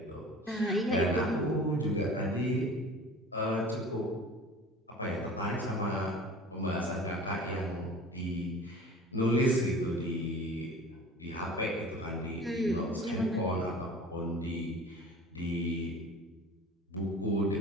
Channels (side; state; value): both; normal; correlation 0.42